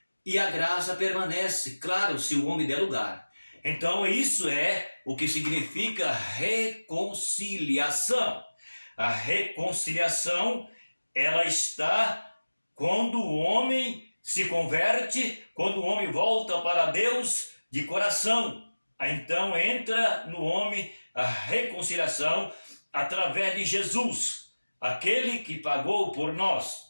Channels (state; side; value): inverted; both; correlation -1.00